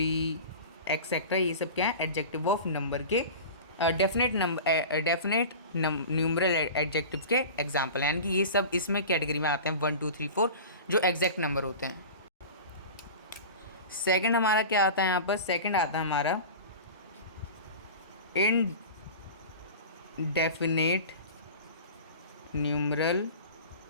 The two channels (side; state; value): both; inverted; correlation -0.34